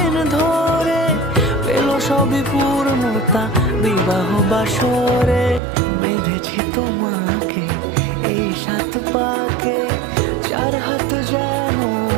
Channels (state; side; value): drops out; left; at 5.6 s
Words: ধরে, পেল সবই পূর্ণতা বিবাহ বাসরে। বেঁধেছি তোমাকে এই 7 পাকে, 4 হাত যেন